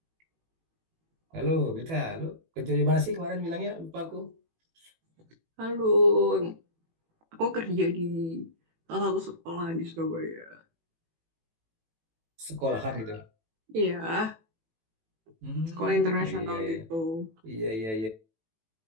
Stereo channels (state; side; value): late; left; 18 ms